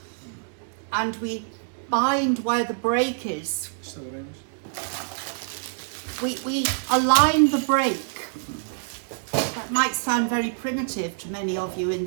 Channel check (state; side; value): silent; left; digital silence